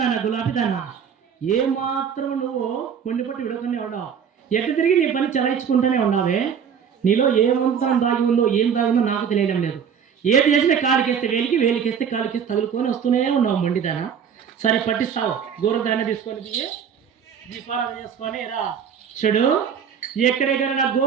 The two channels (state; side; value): quieter; left; 7.5 dB